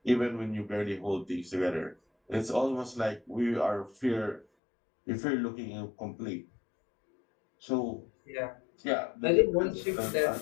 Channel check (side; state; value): right; drops out; at 4.5 s